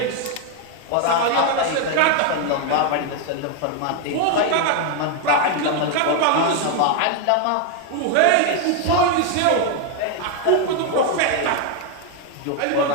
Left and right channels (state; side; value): different; both; correlation 0.01